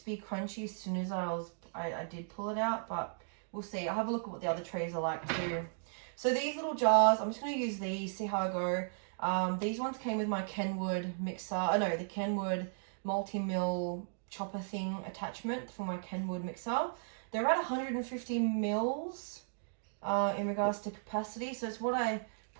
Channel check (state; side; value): silent; left; digital silence